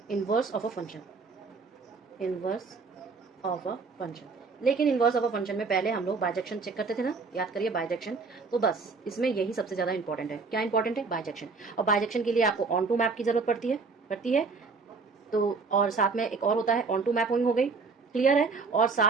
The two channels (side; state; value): left; quieter; 4.5 dB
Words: inverse of a function, inverse of a function. लेकिन इनवर्स ऑफ अ फंक्शन में पहले हम लोग बाइजेक्शन चेक करते थे ना, याद करिए बाइजेक्शन। तो बस इसमें यही सबसे ज़्यादा इंपॉर्टेंट है। क्या इंपॉर्टेंट है, बाइजेक्शन। और बाइजेक्शन के लिए आपको ऑन टू मैप की जरूरत पड़ती है। तो और साथ में एक और होता है ऑन टू मैपिंग, हो गई, क्लियर है। और